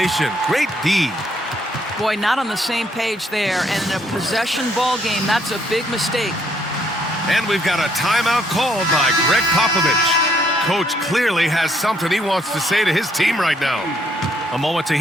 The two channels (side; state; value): both; normal; correlation 0.69